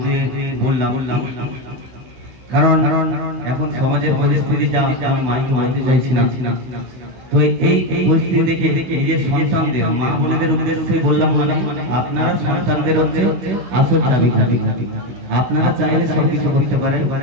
বললাম কারণ এখন সমাজের পরিস্থিতি যা আমি মাইকে বলতে চাইছিলাম তো এই পরিস্থিতি দেখে নিজের সন্তানদের মা বোনেদের উদ্দেশ্যে বললাম মানে আপনারা সন্তানদের হচ্ছে আসল চাবিকাঠি আপনারা চাইলে সবকিছু করতে পারেন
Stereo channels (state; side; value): late; left; 16 ms